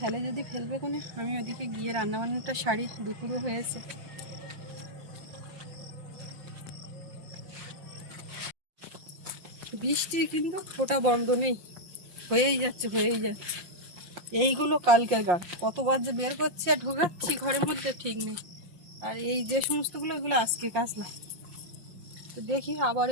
যদি ফেলবে কোনে, আমি ওদিকে গিয়ে রান্নাবান্নাটা সারি, দুপুরও হয়েছে। বৃষ্টি কিন্তু ফোঁটা বন্ধ নেই, হয়েই যাচ্ছে হয়েই যাচ্ছে। এইগুলো কালকের গান, কতবার যে বের করছি আর ঢোকাচ্ছি ঘরের মধ্যে ঠিক নেই। আর এই যে সমস্তগুলো, এগুলো আজকে কাচলাম। তো দেখি আবার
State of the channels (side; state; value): left; late; 5.7 ms